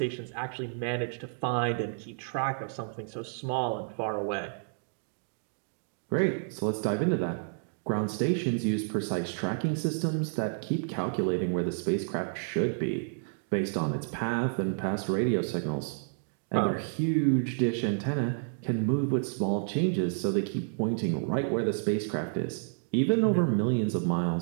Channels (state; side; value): silent; left; digital silence